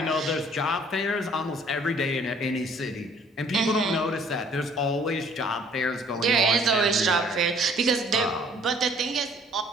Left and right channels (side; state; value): both; normal; correlation 0.57